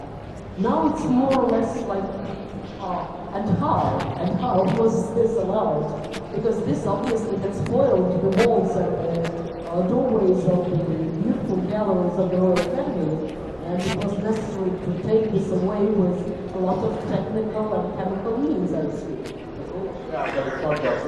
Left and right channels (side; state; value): both; identical; correlation 1.00